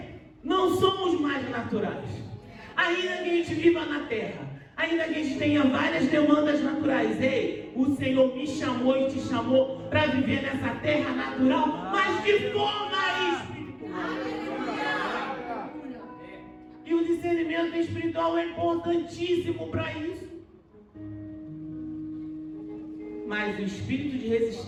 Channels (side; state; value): both; identical; correlation 1.00